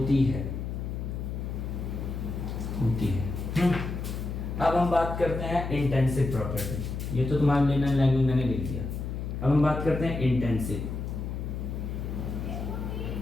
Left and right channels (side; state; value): left; noise; hum, 4 dB below the sound